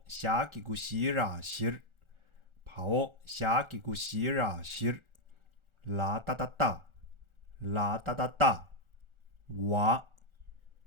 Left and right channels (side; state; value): left; late; 1.4 ms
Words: 下几个西拉西。跑哦，下几个西拉西。啦哒哒哒，啦哒哒哒。哇，